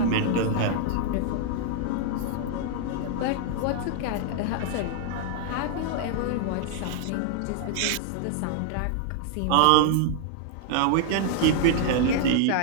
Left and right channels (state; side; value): different; both; correlation -0.01